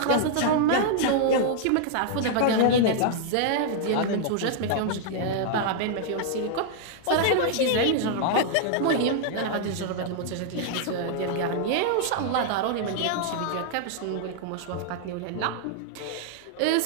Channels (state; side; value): different; both; correlation -0.01